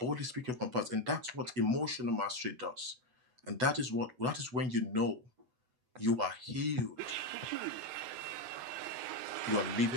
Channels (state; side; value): late; left; 8.0 ms